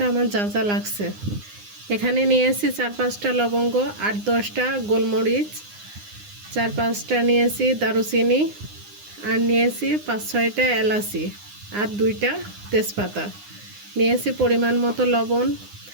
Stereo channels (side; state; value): left; late; 9.7 ms